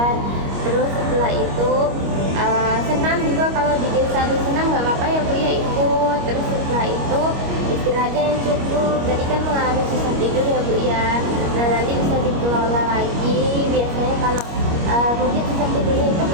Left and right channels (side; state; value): left; late; 25 ms